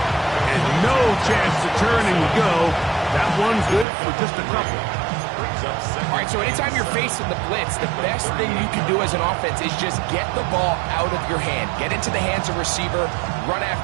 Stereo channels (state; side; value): drops out; left; at 3.9 s